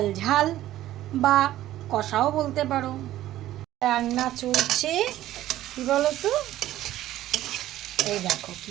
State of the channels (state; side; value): quieter; left; 14.0 dB